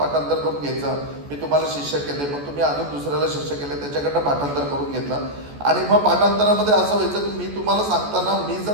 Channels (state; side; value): late; left; 14 ms